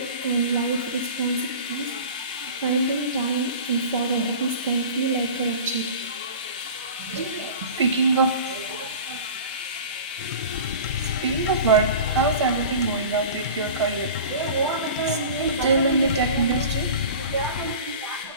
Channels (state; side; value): inverted; both; correlation -0.37